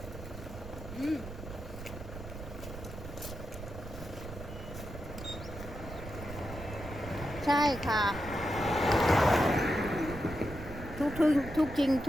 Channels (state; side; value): noise; right; rumble, 11 dB below the sound